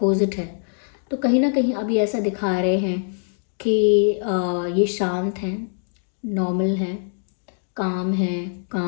है। तो कहीं ना कहीं अभी ऐसा दिखा रहे हैं कि ये शांत हैं, नॉर्मल हैं, काम है,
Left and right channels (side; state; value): right; silent; digital silence